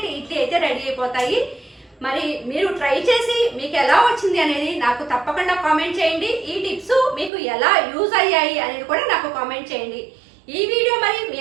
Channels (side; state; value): left; drops out; at 7.3 s